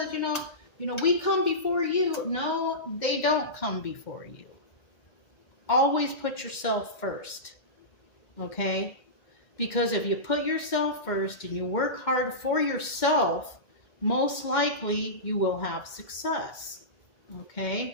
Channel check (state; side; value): late; right; 2.1 ms